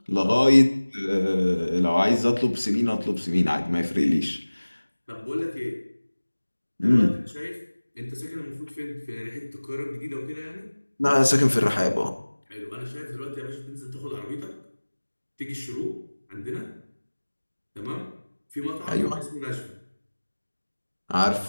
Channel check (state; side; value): inverted; both; correlation -1.00